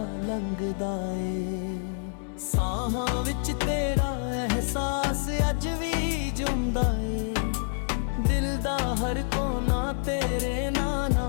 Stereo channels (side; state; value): right; silent; 60 dB below the other